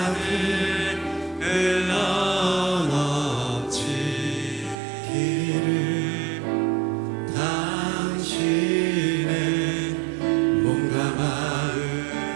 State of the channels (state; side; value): drops out; left; at 4.8 s